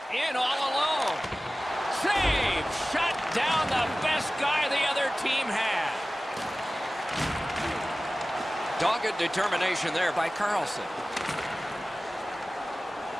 In all alone. Save! Shut down the best guy the other team had. Dogged determination there by Carlson.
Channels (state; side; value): normal; both; correlation 0.97